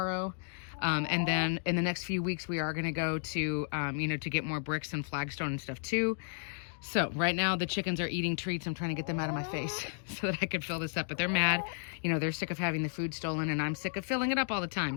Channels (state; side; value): silent; right; digital silence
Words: And then in the next few weeks, we are gonna go to, you know, to get more bricks and flagstone and stuff too. So right now the chickens are eating treats. I'm trying to get them out of my face so that I can fill this up, but they're mad. You know, they're sick of having the food stolen, and I'm sick of filling it up all the